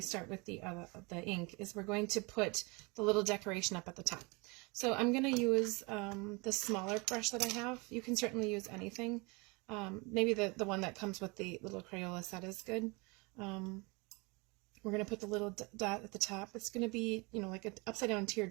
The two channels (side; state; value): left; quieter; 27.9 dB